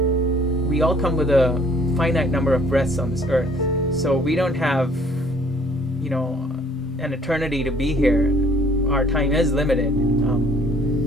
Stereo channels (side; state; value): both; normal; correlation 0.58